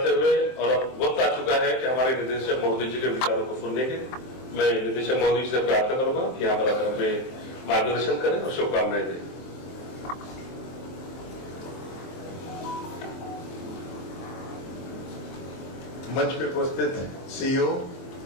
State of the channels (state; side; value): late; right; 23 ms